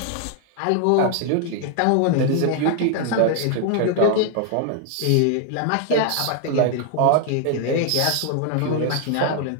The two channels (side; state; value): both; different; correlation 0.00